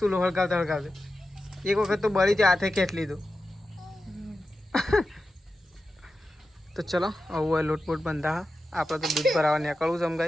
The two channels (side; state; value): both; normal; correlation 0.92